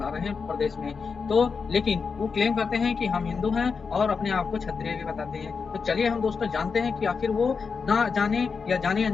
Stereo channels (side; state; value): right; quieter; 5.3 dB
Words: ला रहे हैं प्रदेश में। तो लेकिन वो क्लेम करते हैं कि हम हिंदू हैं और अपने आप को क्षत्रिय भी बताते हैं। तो चलिए हम दोस्तों जानते हैं कि आखिर वो ना जाने या जाने